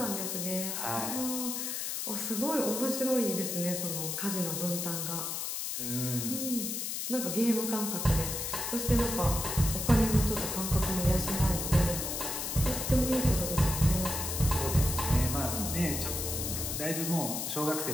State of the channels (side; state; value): left; noise; hiss, 3 dB below the sound